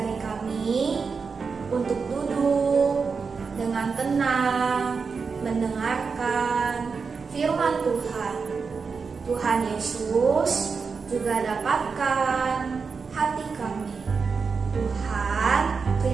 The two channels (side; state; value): left; quieter; 5.2 dB